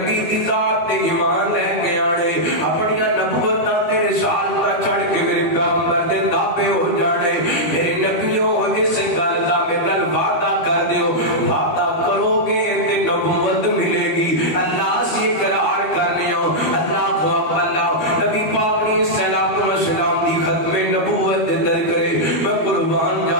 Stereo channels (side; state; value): right; late; 13 ms